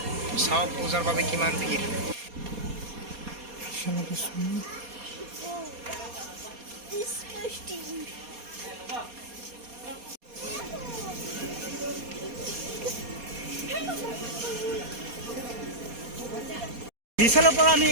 চাওক পূজাৰ বাবে কিমান ভিৰ। বিশালৰ পৰা আমি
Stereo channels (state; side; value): late; left; 4.2 ms